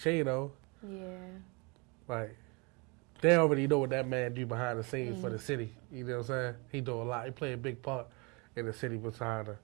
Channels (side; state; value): left; quieter; 29.8 dB